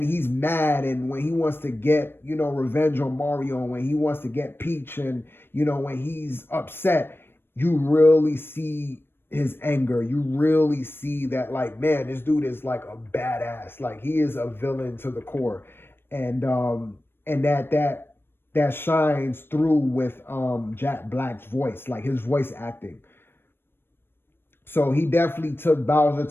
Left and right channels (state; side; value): late; right; 0.10 ms